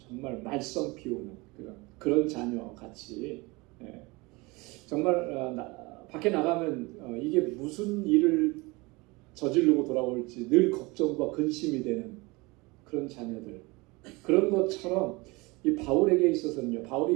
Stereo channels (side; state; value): left; quieter; 24.7 dB